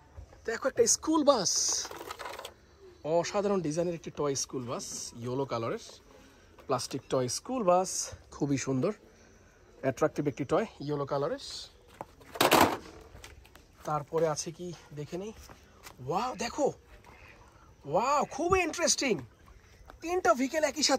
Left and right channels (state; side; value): identical; both; correlation 1.00